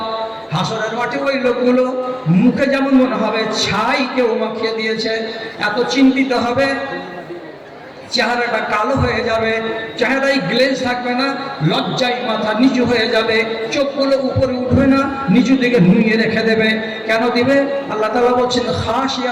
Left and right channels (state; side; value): identical; both; correlation 1.00